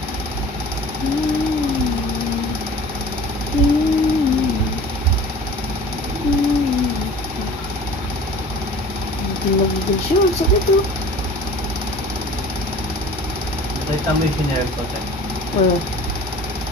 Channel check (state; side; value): normal; both; correlation 0.44